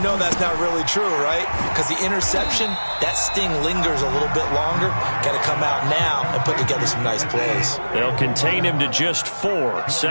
that's not really true, right? Because the interception, that sting lingers a little bit longer. Got to come out now and put together some nice plays. They'll contain him to just 4.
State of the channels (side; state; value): both; inverted; correlation -1.00